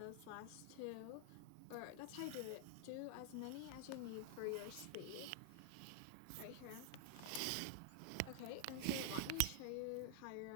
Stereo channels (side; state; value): both; different; correlation 0.00